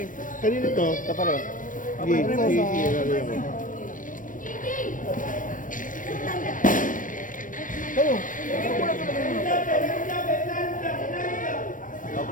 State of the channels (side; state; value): right; late; 0.38 ms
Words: Kanino to? Kapareho. Kayo.